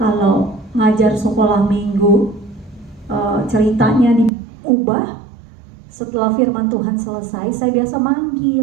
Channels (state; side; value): drops out; left; at 4.3 s